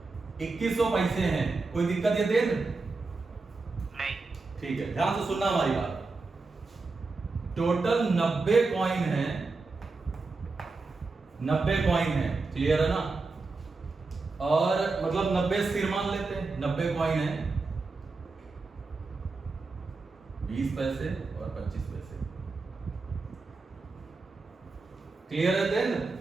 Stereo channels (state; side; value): quieter; left; 3.9 dB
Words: 2100 पैसे हैं, कोई दिक्कत यतेन? नहीं। ठीक है, ध्यान से सुनना हमारी बात। टोटल 90 कॉइन है, 90 कॉइन है, क्लियर है ना? और मतलब 90 सिर मान लेते हैं, 90 कॉइन है, 20 पैसे और 25 पैसे, क्लियर है देन?